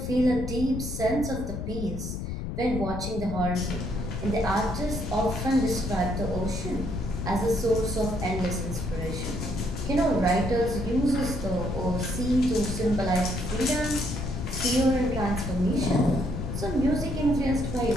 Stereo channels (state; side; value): noise; left; rumble, 5 dB below the sound